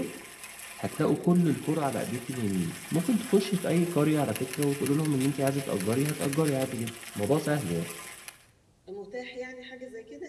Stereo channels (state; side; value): identical; both; correlation 1.00